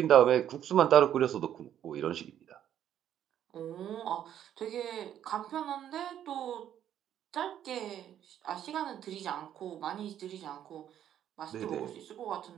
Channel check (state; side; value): quieter; left; 10.5 dB